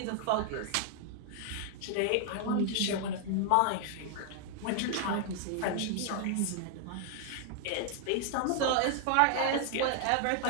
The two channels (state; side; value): different; both; correlation 0.00